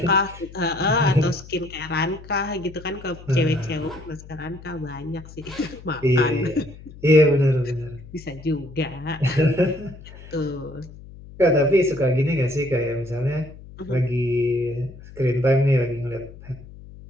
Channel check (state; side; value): noise; left; hum, 18 dB below the sound